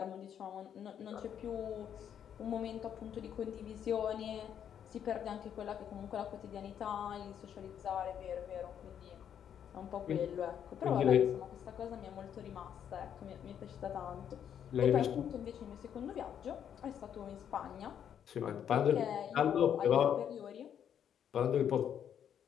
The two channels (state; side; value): quieter; right; 9.0 dB